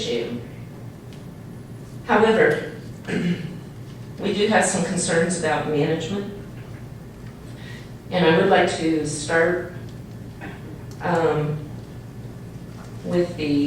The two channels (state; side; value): identical; both; correlation 1.00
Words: them. However, we do have some concerns about management, and I would like to start with